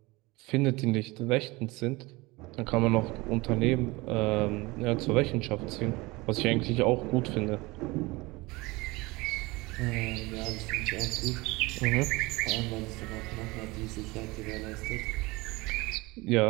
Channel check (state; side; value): quieter; left; 22.8 dB